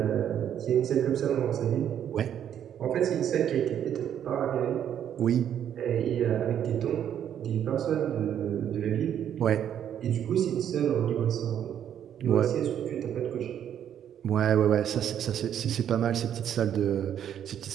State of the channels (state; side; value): quieter; left; 9.7 dB